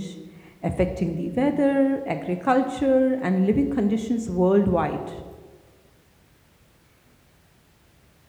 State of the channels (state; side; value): identical; both; correlation 1.00